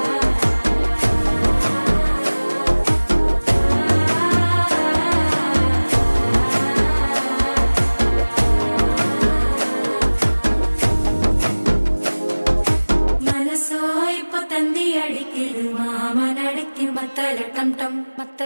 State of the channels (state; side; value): inverted; both; correlation -1.00